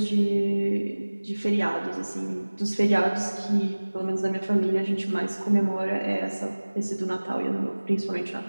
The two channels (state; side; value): inverted; both; correlation -1.00